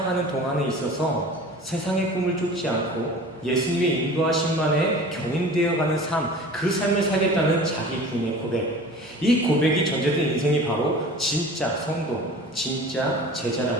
동안에 있어서 세상의 꿈을 쫓지 않고 예수님의 인도하심만에 견인되어가는 삶, 그 삶을 살겠다는 자기 부인의 고백. 이 고백이 전제된 인생이 바로 진짜 성도, 진짜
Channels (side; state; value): both; normal; correlation 0.41